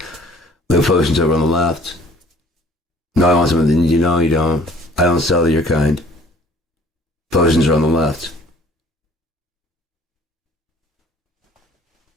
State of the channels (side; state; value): both; normal; correlation 0.53